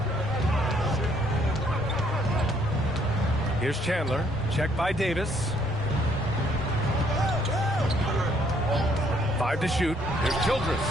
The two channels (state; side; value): normal; both; correlation 0.66